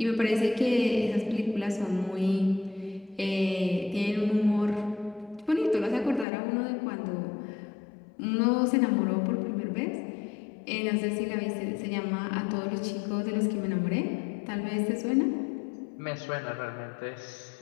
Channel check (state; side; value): drops out; right; at 6.2 s